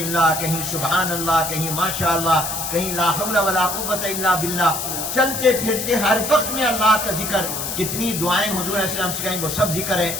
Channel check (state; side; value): noise; left; hiss, 4 dB below the sound